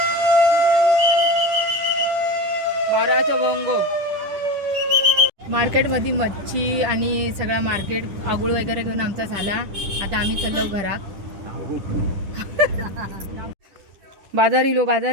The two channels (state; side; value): late; left; 10 ms